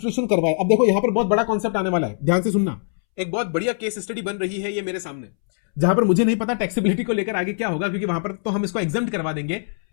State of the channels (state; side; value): silent; right; 64 dB below the other